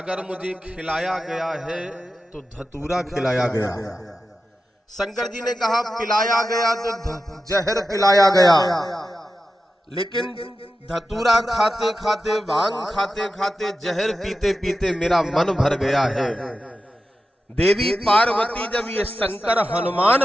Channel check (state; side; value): normal; both; correlation 0.92